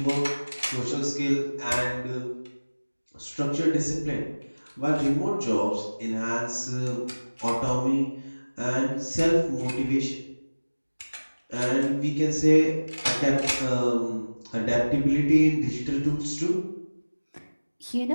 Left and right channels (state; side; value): inverted; both; correlation -1.00